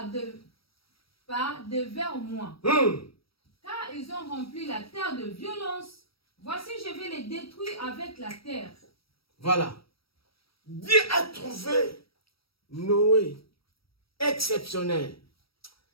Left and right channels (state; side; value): late; right; 0.75 ms